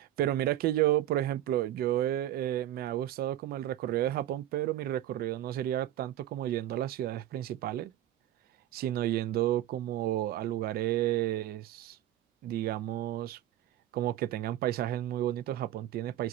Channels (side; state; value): left; quieter; 13.0 dB